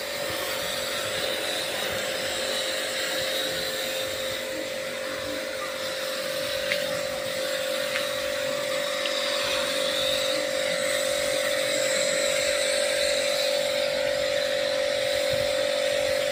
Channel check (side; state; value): both; identical; correlation 1.00